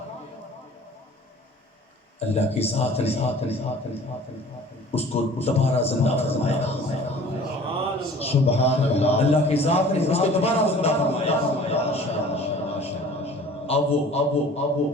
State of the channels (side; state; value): both; normal; correlation 0.47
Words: اللہ کی ذات نے اس کو دوبارہ زندہ فرمایا سبحان اللہ اللہ کی ذات نے اس کو دوبارہ زندہ فرمایا اب